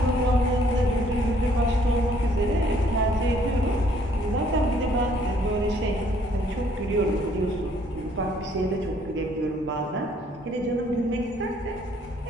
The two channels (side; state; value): both; normal; correlation 0.63